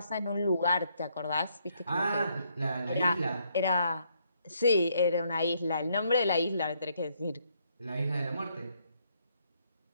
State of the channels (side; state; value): both; inverted; correlation -0.72